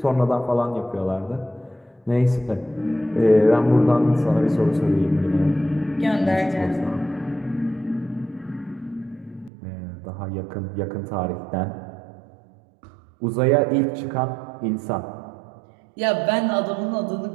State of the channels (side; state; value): left; drops out; at 9.5 s